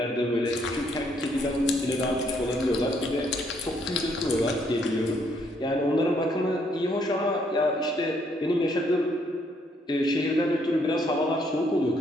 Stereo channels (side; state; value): both; normal; correlation 0.70